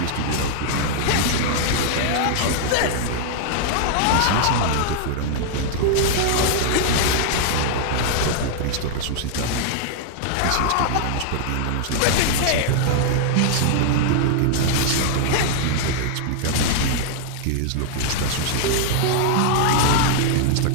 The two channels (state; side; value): different; both; correlation -0.01